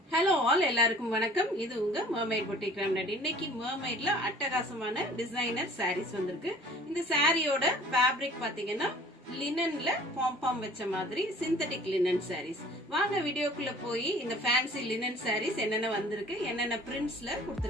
Hello all, எல்லாருக்கும் வணக்கம். இது உங்க மர்மைட் பொட்டிக் ரெமடி. இன்னைக்கு மர்மைட்ல அட்டகாசமான டிசைனர் சாரீஸ் வந்திருக்கு. இந்த சாரியோட ஃபேப்ரிக் பாத்தீங்கன்னா லினன்ல பாம் வச்ச மாதிரி சிந்தட்டிக் லினன் சாரீஸ். வாங்க வீடியோக்குள்ள போய் இந்த ஃபேன்சி லினன் சாரீஸ் என்னென்ன வந்திருக்கு, என்னென்ன பிரிண்ட்ஸ்ல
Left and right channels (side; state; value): both; normal; correlation 0.49